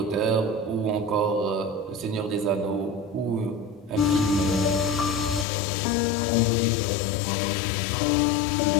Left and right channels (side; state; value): right; drops out; at 5.5 s